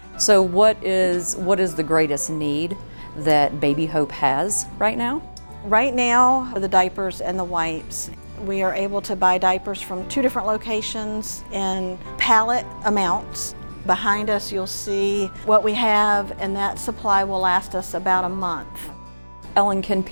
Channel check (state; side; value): inverted; both; correlation -1.00